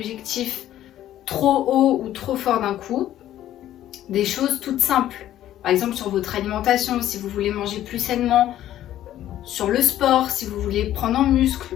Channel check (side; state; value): right; quieter; 12.6 dB